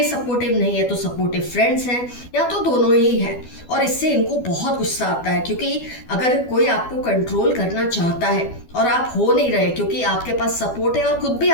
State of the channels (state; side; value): late; right; 12 ms